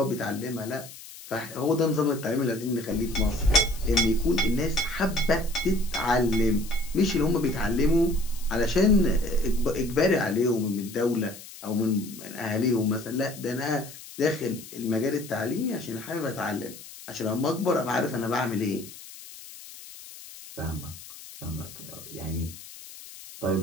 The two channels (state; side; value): noise; left; hiss, 16 dB below the sound